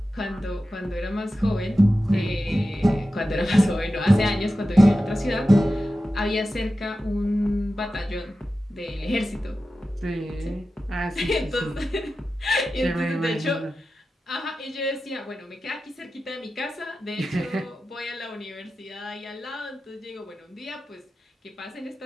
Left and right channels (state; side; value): normal; both; correlation 0.93